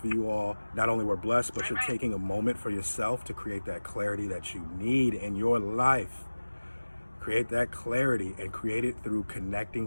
you all not only were blessed, but you're taking a moment for yourself to create that clarity that you need in your life. Create that clarity and create it through connecting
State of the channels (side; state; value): both; inverted; correlation -1.00